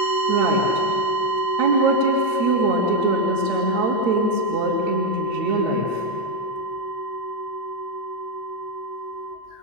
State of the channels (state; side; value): late; left; 8.6 ms